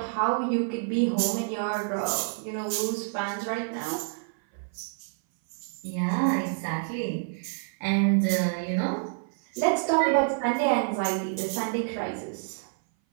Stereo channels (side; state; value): left; silent; 57 dB below the other